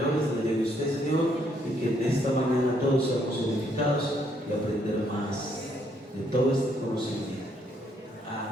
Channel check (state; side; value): normal; both; correlation 0.71